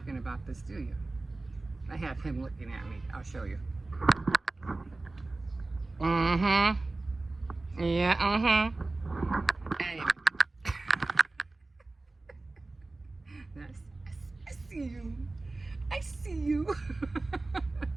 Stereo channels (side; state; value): left; quieter; 3.2 dB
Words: about this, do you? I have him looking at me. I'll show you. Yeah, Anyway. I see you.